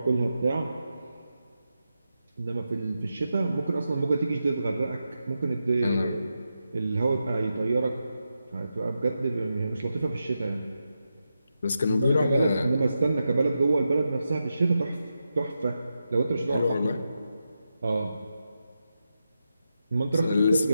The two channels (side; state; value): both; inverted; correlation -0.88